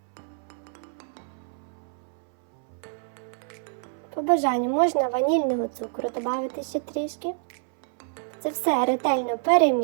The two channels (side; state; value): left; silent; 60 dB below the other